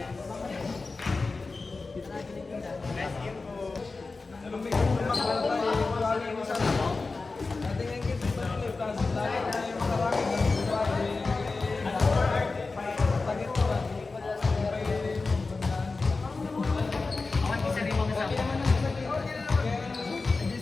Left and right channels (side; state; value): right; quieter; 3.9 dB